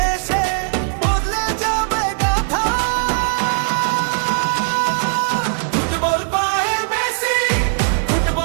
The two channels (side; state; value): left; silent; 57 dB below the other